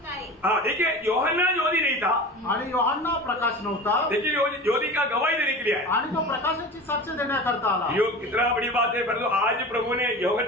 लाए। देखिए, यूहन्ना ज्योति नहीं था आणि योहान्ना प्रकाश नव्हता, देखिए ज्योति का गवाही देने के लिए आया आणि तो प्रकाशाची साक्ष देण्याकरता आला। यो कितना बड़ी बात है। परंतु आज प्रभु ने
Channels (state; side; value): normal; both; correlation 0.33